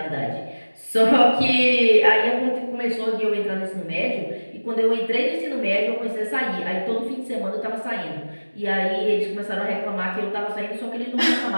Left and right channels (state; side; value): inverted; both; correlation -1.00